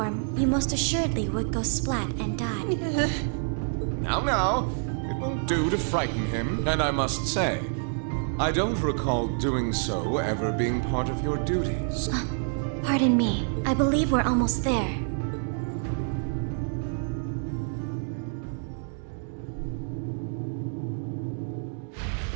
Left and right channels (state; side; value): silent; left; 60 dB below the other